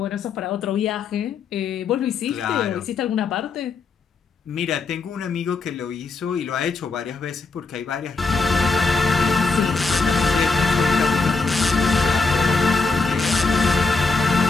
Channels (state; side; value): quieter; right; 4.2 dB